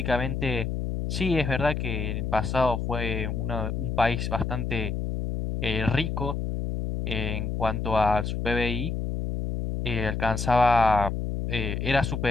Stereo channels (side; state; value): left; noise; hum, 2 dB below the sound